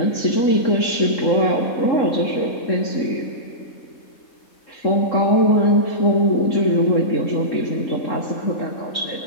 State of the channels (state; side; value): late; right; 3.7 ms